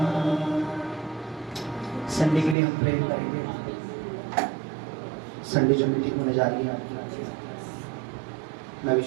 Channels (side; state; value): left; drops out; at 2.6 s